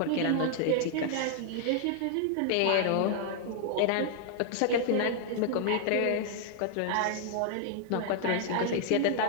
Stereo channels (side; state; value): both; different; correlation 0.00